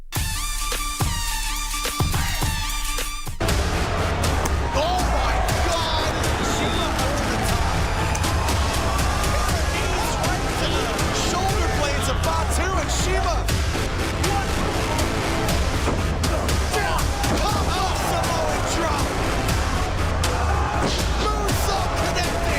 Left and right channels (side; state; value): both; identical; correlation 1.00